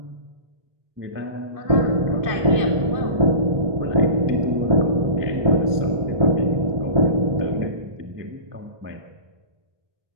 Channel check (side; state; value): left; late; 1.2 ms